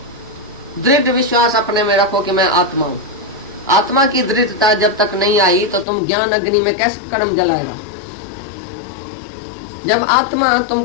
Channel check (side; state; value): right; drops out; at 5.9 s